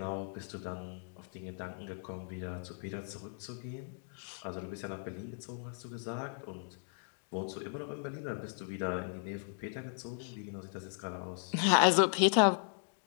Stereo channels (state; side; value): silent; right; digital silence